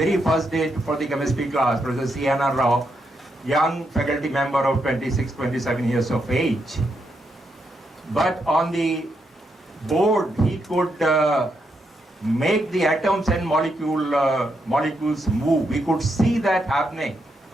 first day for the chemistry class, Professor C.N.R. Rao, young faculty member of 26, 27 years of age. But on the board, he could make the atoms and molecules move. We could see that happening.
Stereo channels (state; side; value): normal; both; correlation 0.80